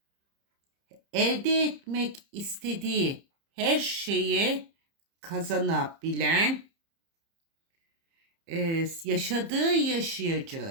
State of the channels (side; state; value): left; late; 30 ms